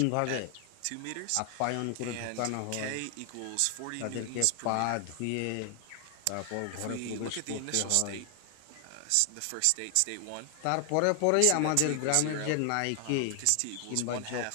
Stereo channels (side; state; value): both; different; correlation 0.00